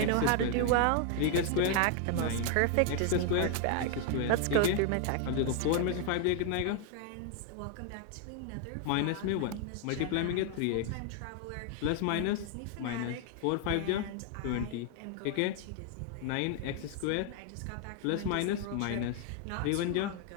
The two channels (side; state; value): both; different; correlation 0.00